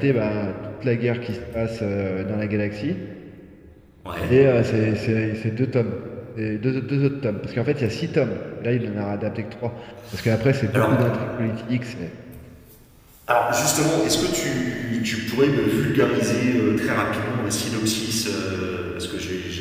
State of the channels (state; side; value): identical; both; correlation 1.00